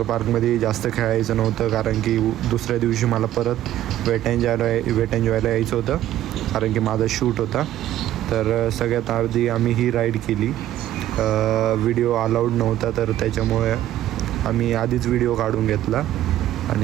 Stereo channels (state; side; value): quieter; left; 13.1 dB